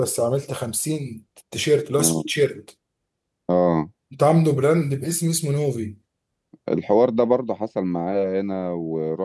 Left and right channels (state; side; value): identical; both; correlation 1.00